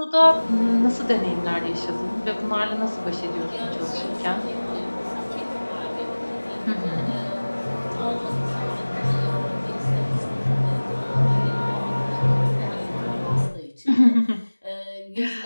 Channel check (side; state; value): both; inverted; correlation -1.00